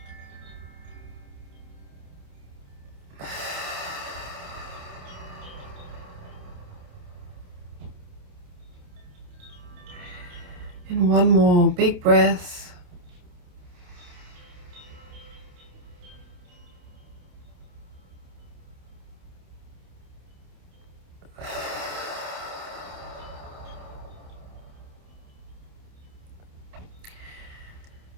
And one more big breath.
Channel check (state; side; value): late; left; 28 ms